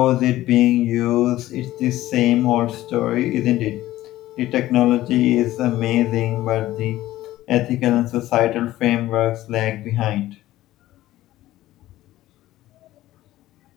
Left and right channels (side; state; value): right; quieter; 15.4 dB